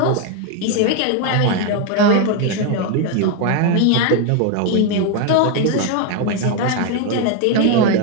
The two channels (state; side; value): different; both; correlation 0.01